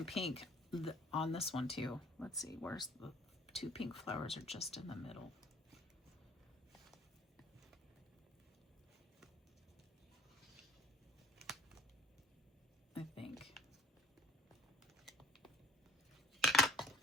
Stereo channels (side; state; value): both; normal; correlation 0.53